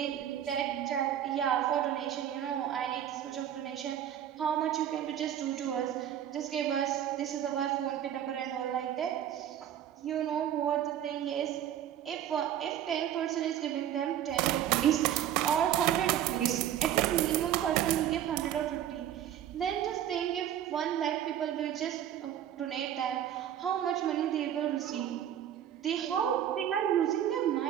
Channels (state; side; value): quieter; left; 10.6 dB